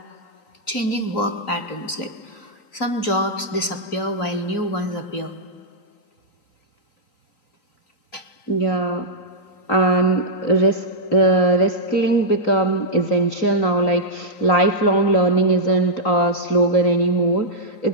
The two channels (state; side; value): late; right; 3.9 ms